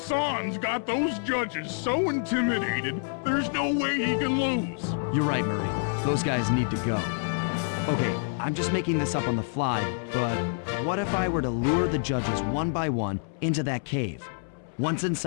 got those judges so intimidated, there's no way he can lose. You're right, Murray. Those guys need to go. Okay, I'm just making this up on the fly, but what if I were to lure the judges one by one into that cave? Once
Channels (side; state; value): right; silent; 60 dB below the other